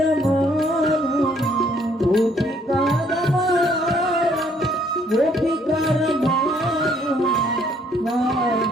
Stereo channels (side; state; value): both; normal; correlation 0.65